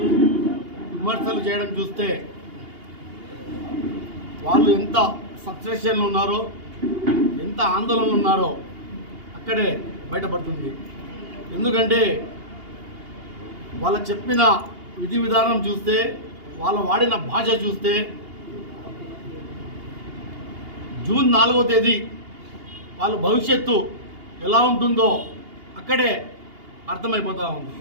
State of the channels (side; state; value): left; late; 2.8 ms